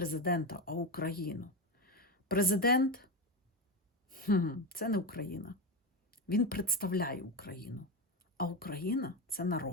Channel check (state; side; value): normal; both; correlation 0.16